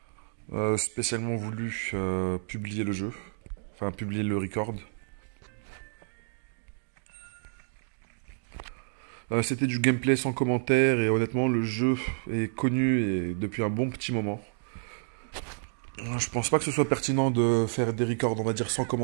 spécialement voulu publier le jeu. Enfin publier le record. C'était du gameplay sans commentaire et honnêtement le jeu est connu et depuis un bon petit moment. Je pense pas que ce soit pertinent de faire des records, on va dire, sans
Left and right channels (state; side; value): silent; left; digital silence